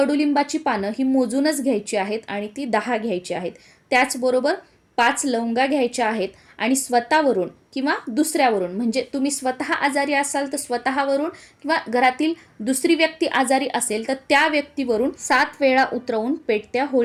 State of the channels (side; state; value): both; identical; correlation 1.00